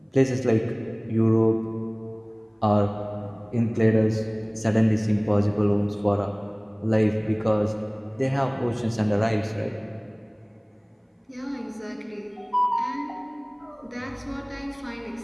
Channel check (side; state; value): both; identical; correlation 1.00